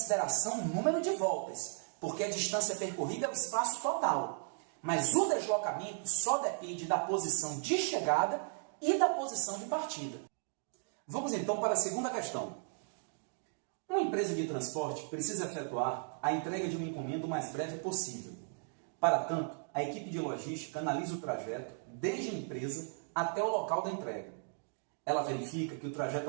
o número de voltas, porque a distância percorrida é o espaço total. Mas o deslocamento só depende da posição de chegada e da posição de partida. Vamos então para a segunda questão. Uma empresa de transporte precisa efetuar a entrega de uma encomenda o mais breve possível. Para tanto, a equipe de logística analisa o trajeto desde a empresa até o local da entrega. Ela verifica que o trajeto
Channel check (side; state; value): left; silent; 54 dB below the other